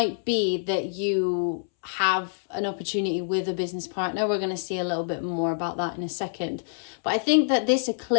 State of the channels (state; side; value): silent; right; 61 dB below the other